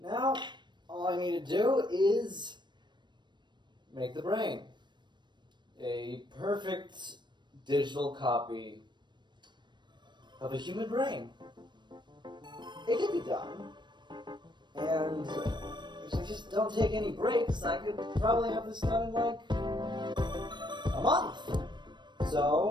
all I need to do is make the brain. A perfect digital copy of a human brain. It can be done. And if I just don't take any breaks, I could probably have this done in like a month.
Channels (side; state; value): left; late; 0.22 ms